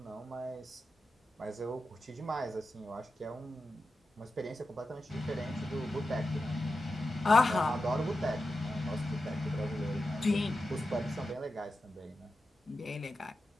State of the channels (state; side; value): normal; both; correlation 0.91